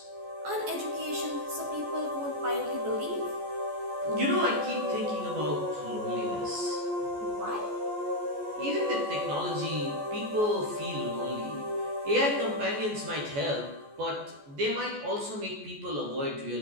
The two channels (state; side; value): late; left; 14 ms